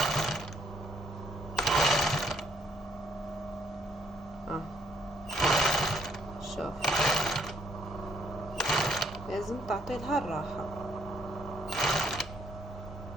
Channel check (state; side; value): normal; both; correlation 0.69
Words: شوف لازم تعطي لها الراحه.